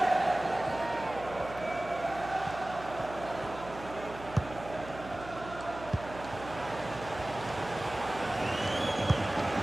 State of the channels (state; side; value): noise; right; hum, 14 dB below the sound